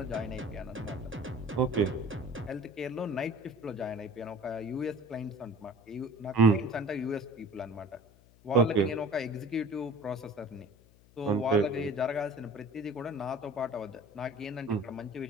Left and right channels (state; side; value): noise; left; hum, 26 dB below the sound